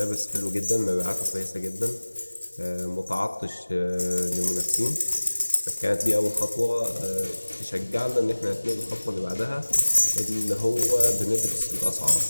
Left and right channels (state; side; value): inverted; both; correlation -1.00